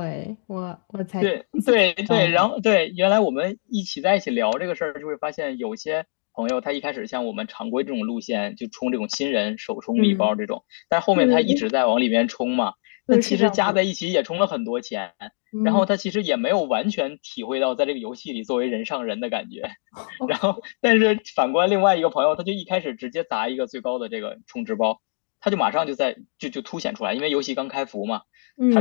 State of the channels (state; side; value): silent; right; digital silence